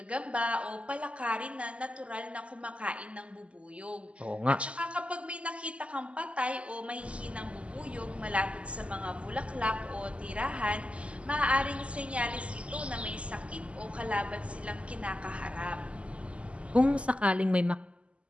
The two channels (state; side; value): late; left; 0.059 ms